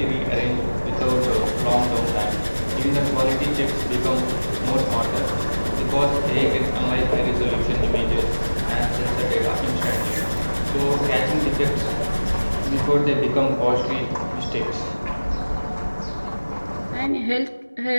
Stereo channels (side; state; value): both; inverted; correlation -1.00